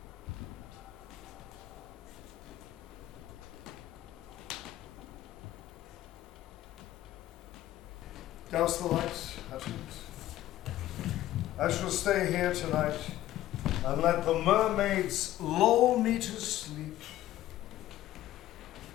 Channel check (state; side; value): quieter; right; 14.2 dB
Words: Douse the lights, Hutchins. I shall stay here tonight and let the mermaids lull me to sleep.